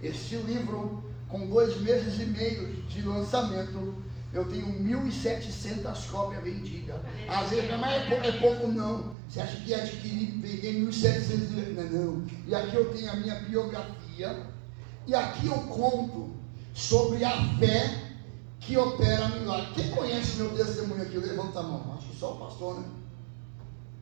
Este livro, com 2 meses e meio de lançamento, eu tenho 1.700 cópias vendidas. Às vezes, mas é pouco não. Você acha que adquirir, vender 1.700? Não. E aqui eu tenho a minha biografia. E aqui eu conto sobre a fé que opera milagre. Quem conhece meu testemunho aqui? Levanta a mão. Acho que só o pastor, né?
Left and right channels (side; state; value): left; drops out; at 9.2 s